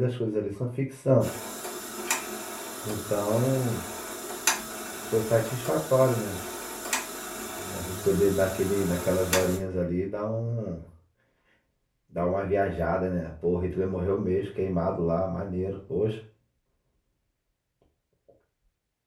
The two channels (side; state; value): both; identical; correlation 1.00